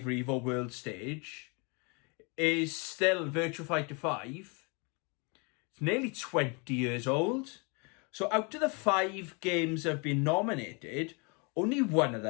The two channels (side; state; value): right; quieter; 32.3 dB